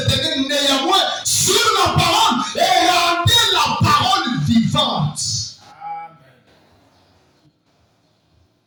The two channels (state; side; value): identical; both; correlation 1.00